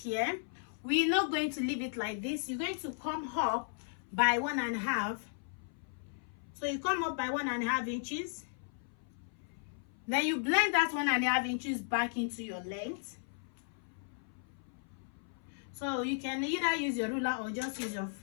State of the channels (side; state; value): right; silent; 54 dB below the other